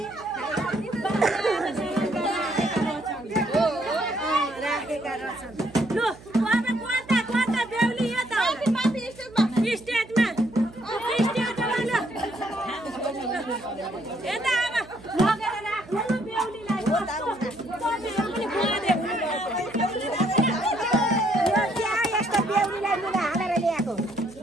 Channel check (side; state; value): right; noise; hum, 21 dB below the sound